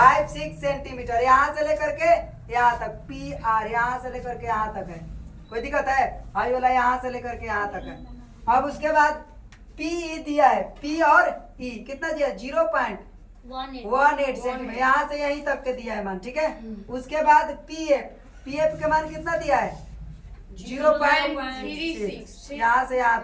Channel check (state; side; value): identical; both; correlation 1.00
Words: सेंटीमीटर यहाँ से लेकर के यहाँ तक पी आर यहाँ से लेकर के यहाँ तक है कोई दिक्कत है आई वाला यहाँ से लेकर के यहाँ तक है। अब उसके बाद पी ई दिया है पी और ई कितना दिया 0.18 सेंटीमीटर यहाँ से यहीं तक के दिया है मान ठीक है। उसके बाद पी एफ का मान कितना दिया है 0.36 यहाँ से यहाँ